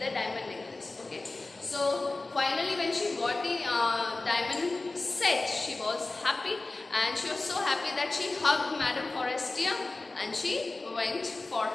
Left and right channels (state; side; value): quieter; right; 3.3 dB